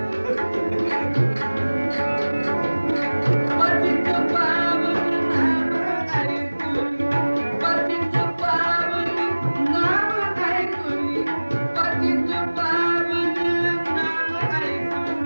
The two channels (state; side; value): inverted; both; correlation -1.00